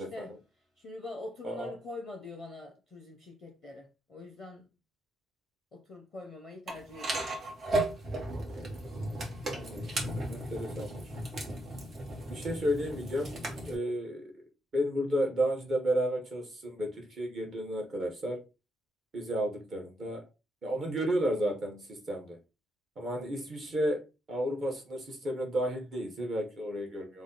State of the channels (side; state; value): both; normal; correlation 0.79